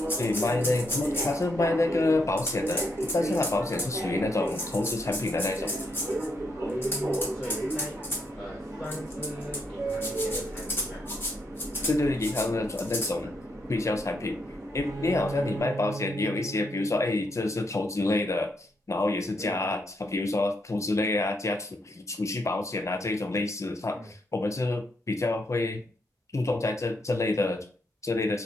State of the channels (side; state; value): both; normal; correlation 0.77